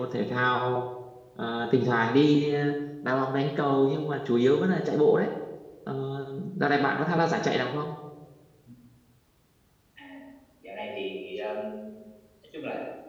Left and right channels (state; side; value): identical; both; correlation 1.00